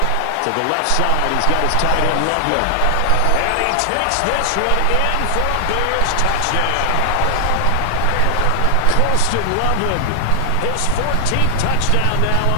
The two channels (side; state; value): both; different; correlation 0.00